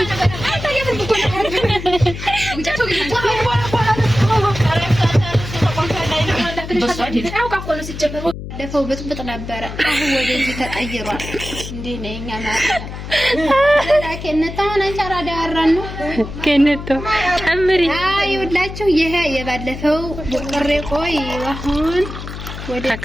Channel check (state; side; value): noise; left; hum, 9 dB below the sound